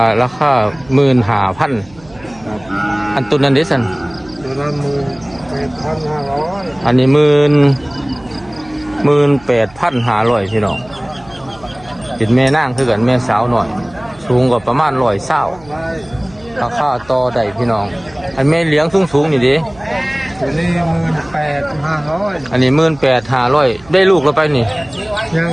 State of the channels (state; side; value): noise; right; hum, 24 dB below the sound